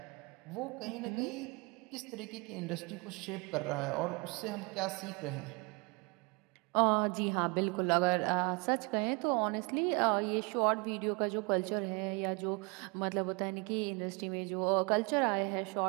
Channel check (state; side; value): quieter; left; 30.2 dB